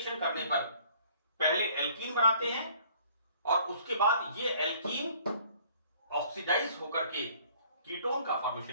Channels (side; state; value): both; inverted; correlation -0.58